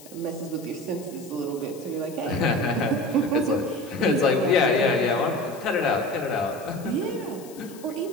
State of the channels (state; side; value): noise; left; hiss, 20 dB below the sound